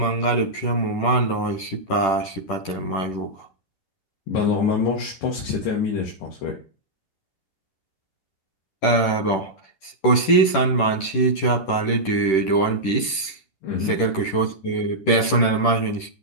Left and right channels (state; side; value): late; right; 10 ms